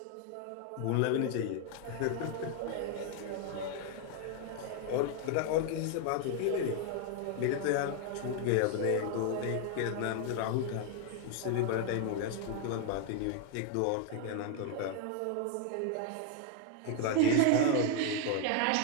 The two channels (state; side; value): different; both; correlation 0.00